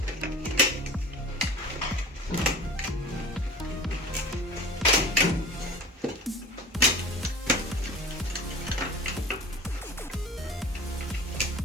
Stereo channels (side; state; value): both; normal; correlation 0.40